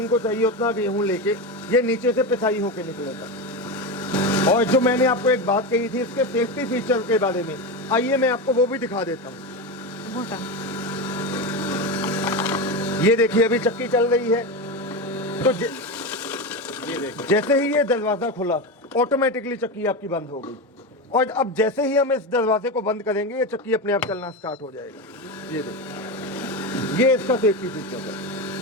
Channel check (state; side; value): normal; both; correlation 0.17